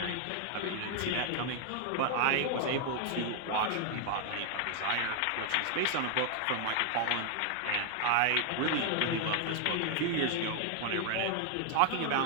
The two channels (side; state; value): both; different; correlation 0.00